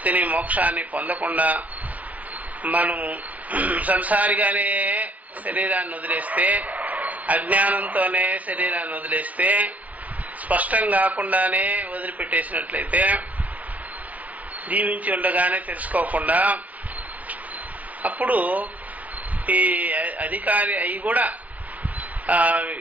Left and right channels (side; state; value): left; late; 0.075 ms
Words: మోక్షాన్ని పొందకుండా మనము సంసారిగానే శరీరాన్ని వదిలేస్తే, అజ్ఞానంతోనే శరీరాన్ని వదిలేస్తే, స్పష్టం కాకుండానే వదిలిపెట్టేసినట్లయితే, జీవించి ఉండగానే తెలుసుకోకుండా, అప్పుడు ఈ అధికారి అయి కూడా